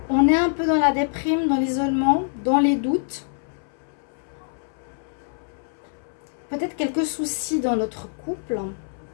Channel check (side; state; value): right; silent; 61 dB below the other